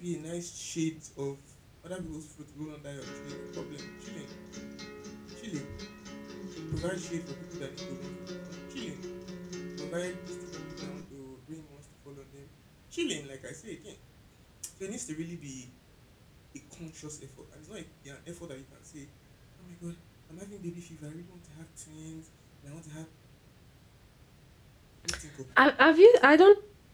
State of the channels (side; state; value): both; identical; correlation 1.00